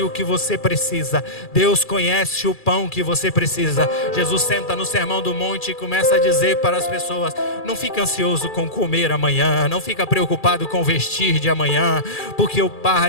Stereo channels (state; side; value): late; right; 2.4 ms